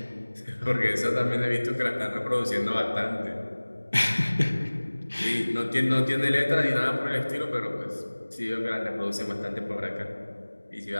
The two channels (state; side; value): inverted; both; correlation -1.00